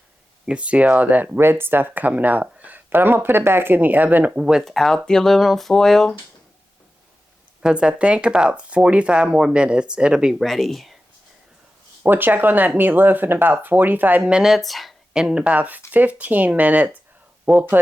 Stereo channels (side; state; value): both; normal; correlation 0.93